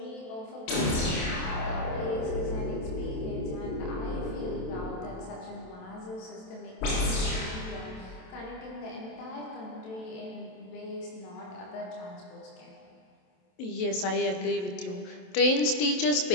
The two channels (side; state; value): right; late; 27 ms